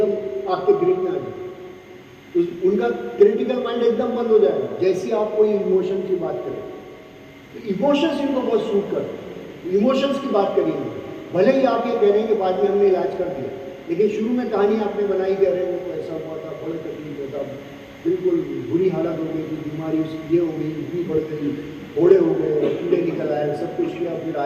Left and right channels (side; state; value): both; identical; correlation 1.00